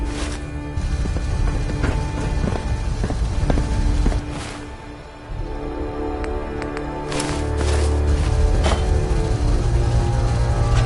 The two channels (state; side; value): identical; both; correlation 1.00